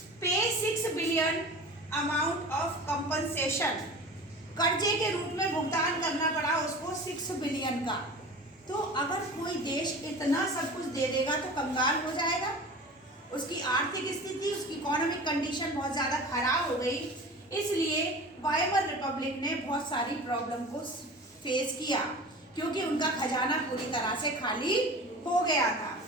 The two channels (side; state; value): both; normal; correlation 0.37